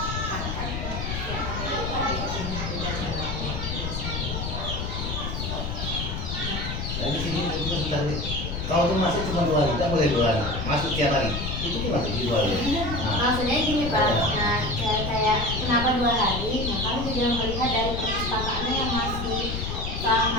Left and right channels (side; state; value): left; noise; rumble, 4 dB below the sound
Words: Dari sini juga sudah kalau tuh masuk cuma 2 hari, tidak boleh 2 hari, masuk tiap hari. Itu gimana sih 2 hari? Nah, Maksudnya gini Pak, nah kayak kenapa 2 hari? Nah kami juga melihat dari perpustakaannya yang masih